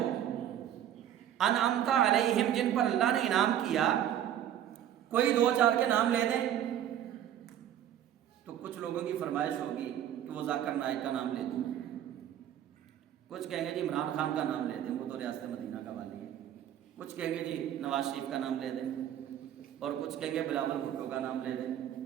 انعمت علیہم، جن پر اللہ نے انعام کیا. کوئی 2-4 کے نام لے دیں تو کچھ لوگوں کی فرمائش ہوگی کہ وہ ذاکر نائک کا نام لے دوں، کچھ کہیں گے جی عمران خان کا نام لے دیں، وہ تو ریاست مدینہ کا والی ہے. کچھ کہیں گے جی نواز شریف کا نام لے دیں، اور کچھ کہیں گے بلاول بھٹو کا نام لے دیں.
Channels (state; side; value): quieter; left; 10.7 dB